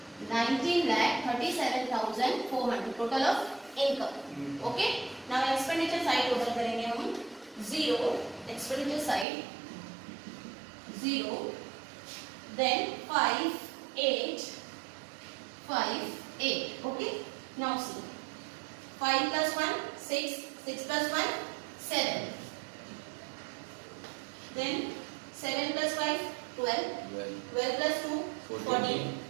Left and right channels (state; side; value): drops out; left; at 9.2 s